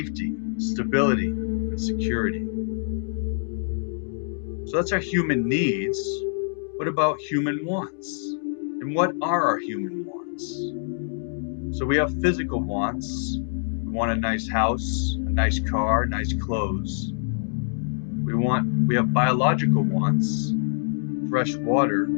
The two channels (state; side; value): silent; right; digital silence